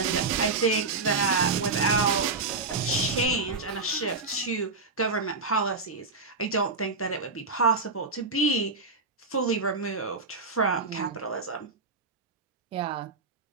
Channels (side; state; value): left; quieter; 4.0 dB